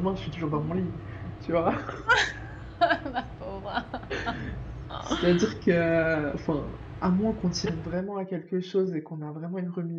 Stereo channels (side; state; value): both; identical; correlation 1.00